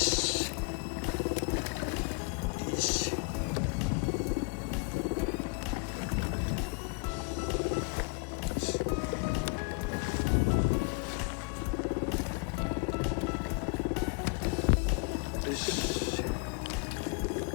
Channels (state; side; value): quieter; right; 32.2 dB